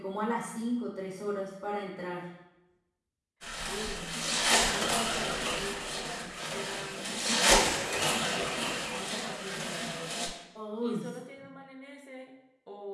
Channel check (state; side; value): identical; both; correlation 1.00